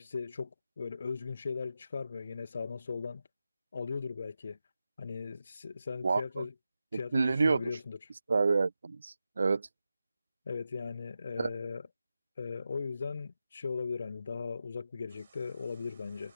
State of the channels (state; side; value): inverted; both; correlation -0.90